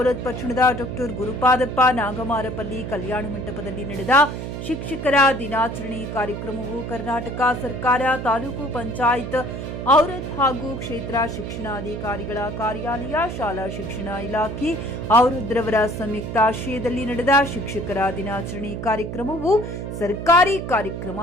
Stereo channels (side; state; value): right; noise; hum, 6 dB below the sound